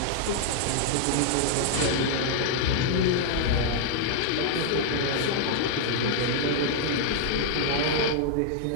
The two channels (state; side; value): different; both; correlation -0.01